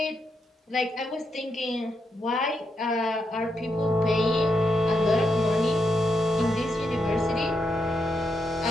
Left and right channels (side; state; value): both; normal; correlation 0.82